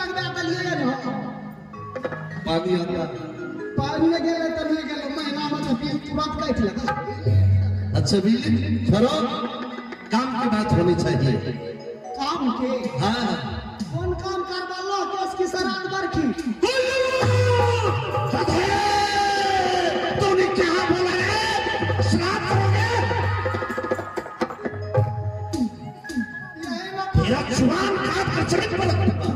दलिए न पानी आता पानी गेले त नहीं गेले महीना में तो बिल तुरंत काट लगा। अच्छा बिजली छोड़ो, काम की बात होनी चाहिए। काम के हाँ कौन काम करवा लो केस की सराद बरखी तूने क्या बोला है? श्राद्ध करोगे? तेरा जुबान काट कर चढ़ पड़ूंगा,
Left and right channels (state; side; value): identical; both; correlation 1.00